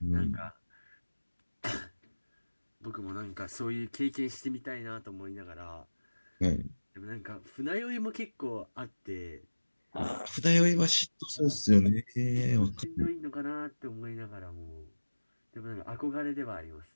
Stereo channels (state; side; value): inverted; both; correlation -1.00